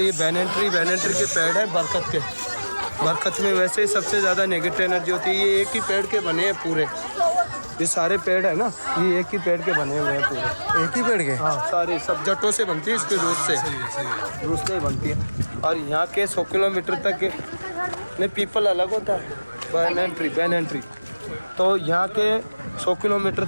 ये बैनेंट्री के पेड़ है बरकत के, बरकत में वैसे ही सबसे ज़्यादा नेगेटिव एनर्जी होती है। ये एक ही पेड़ के बने हैं पूरे, ये सारे पेड़ है ना, ये एक ही पेड़ के बने हुए हैं पूरे, एक ही पेड़ के, हाँ सारे, सब जट्टों से बनती है, इसके रूस से बनती है। और यहाँ के 100 किलोमीटर तक नहीं, पीपल अलग होता है, बैनेंट्री। तो यहाँ के 100 किलोमीटर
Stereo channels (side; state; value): both; inverted; correlation -1.00